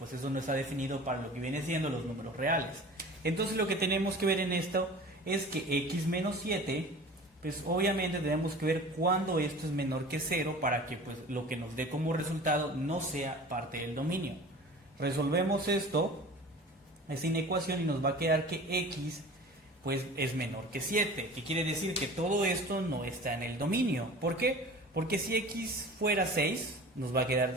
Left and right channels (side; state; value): both; normal; correlation 0.40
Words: eso no está definido para lo que viene siendo los números reales. Entonces lo que tenemos que ver en esto es que x menos 7, pues obviamente tenemos que ver cuándo esto es menor que 0 para que pues lo que nos dé como resultado no sea parte del dominio. Resolvemos esta inecuación y nos va a quedar que x pues es menor que 7, que quiere decir que todo esto no está en el dominio. ¿Por qué? Porque si x fuera 6, nos va a